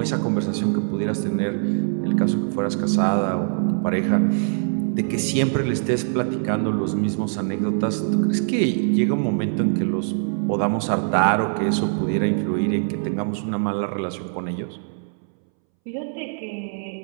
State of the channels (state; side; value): silent; left; 63 dB below the other